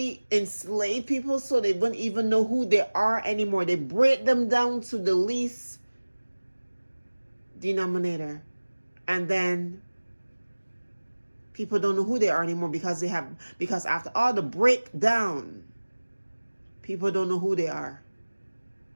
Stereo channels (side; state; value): both; inverted; correlation -1.00